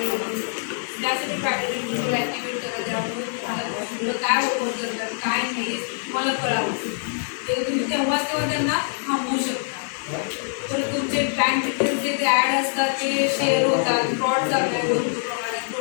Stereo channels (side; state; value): right; silent; digital silence